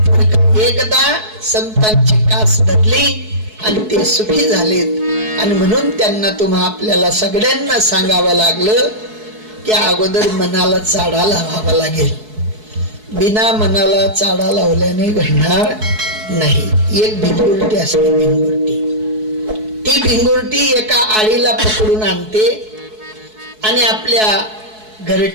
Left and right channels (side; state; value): left; late; 4.7 ms